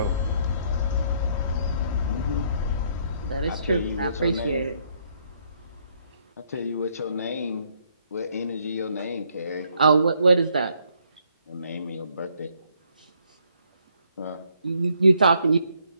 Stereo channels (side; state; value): both; inverted; correlation -0.69